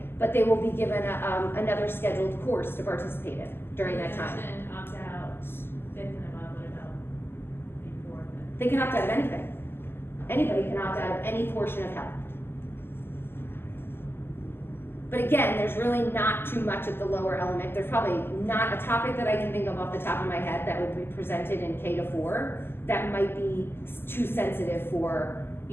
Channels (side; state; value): right; late; 0.11 ms